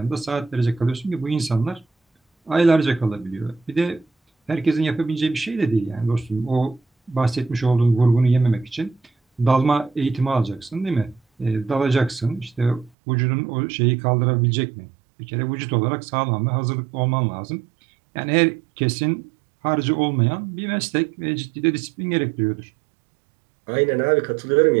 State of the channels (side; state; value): left; drops out; at 12.9 s